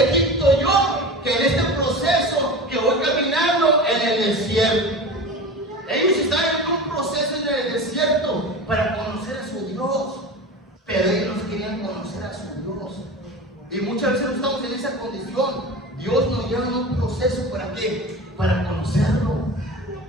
Egipto yo que en este proceso que voy caminando en el desierto. Ellos estaban en un proceso en el desierto para conocer a su Dios, pero ellos no querían conocer a su Dios. Y muchas veces no estamos en esa condición. Dios nos lleva en un proceso, ¿para qué? Para conocerlo.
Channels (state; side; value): normal; both; correlation 0.32